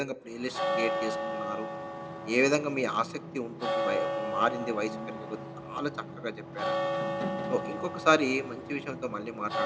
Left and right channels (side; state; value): both; identical; correlation 1.00